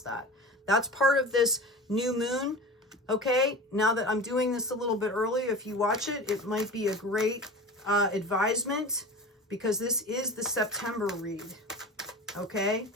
that. That's part of this new moon. Okay, now that I'm doing this a little bit early, if you watch it, it might be a great advisement because this is the September read. Okay,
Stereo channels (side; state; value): both; normal; correlation 0.33